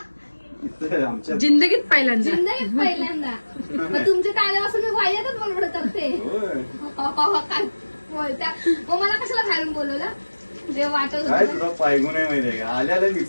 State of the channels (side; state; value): both; inverted; correlation -1.00